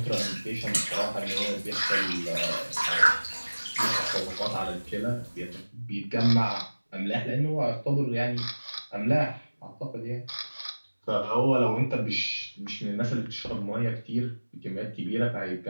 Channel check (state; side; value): inverted; both; correlation -1.00